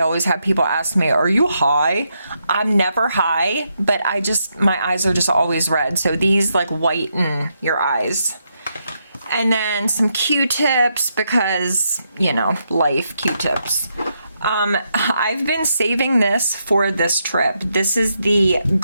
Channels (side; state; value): both; inverted; correlation -0.80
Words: have people ask me, are you high? I'm never high, but my eyes are just always red. So these like whiten your eyes. And then some Q-tips because, you know, life, Q-tips. I've been saving this for this trip. This is the